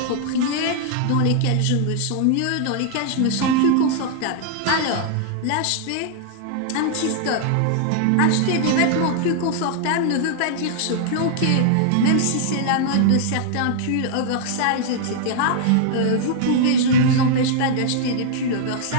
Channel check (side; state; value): both; different; correlation -0.01